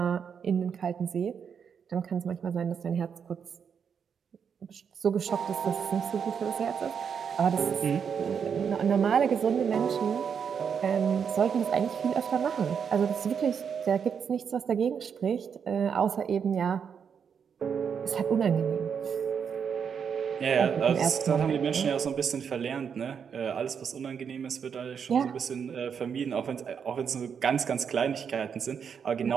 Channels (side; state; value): left; quieter; 7.1 dB